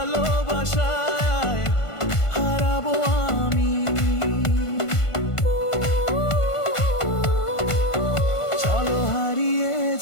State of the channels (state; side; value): late; right; 1.5 ms